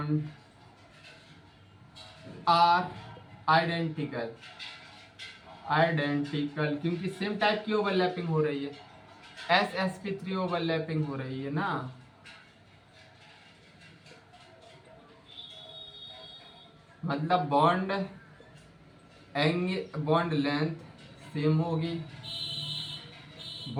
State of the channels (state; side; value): identical; both; correlation 1.00